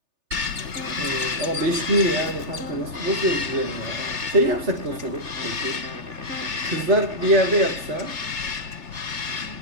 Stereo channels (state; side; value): late; left; 3.3 ms